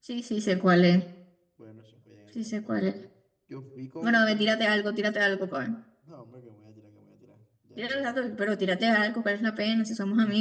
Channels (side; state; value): both; identical; correlation 1.00